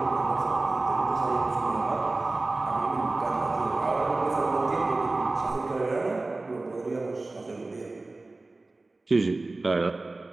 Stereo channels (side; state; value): left; quieter; 3.2 dB